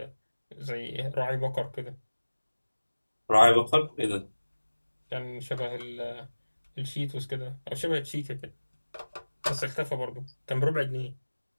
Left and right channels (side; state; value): both; inverted; correlation -1.00